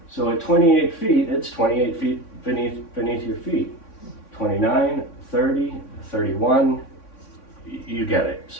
So at 28 feet, it's 28 feet beneath your feet. 29, 30, 31, you get it.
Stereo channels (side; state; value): right; late; 3.6 ms